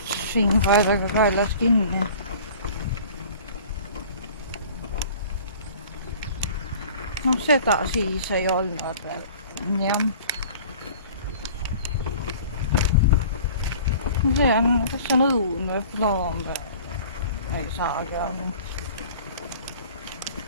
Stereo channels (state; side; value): inverted; both; correlation -0.45